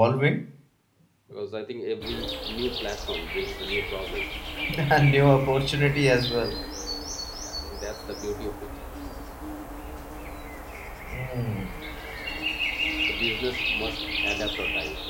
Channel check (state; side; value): identical; both; correlation 1.00